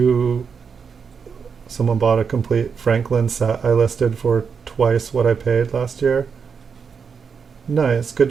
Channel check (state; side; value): quieter; left; 6.1 dB